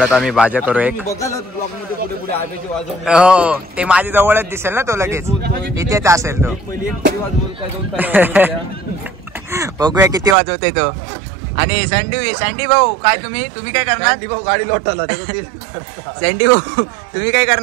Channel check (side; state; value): left; drops out; at 10.4 s